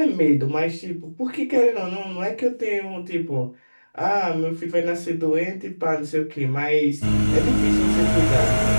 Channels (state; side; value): inverted; both; correlation -1.00